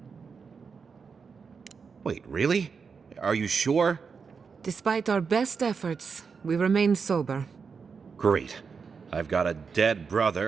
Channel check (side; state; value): left; quieter; 5.6 dB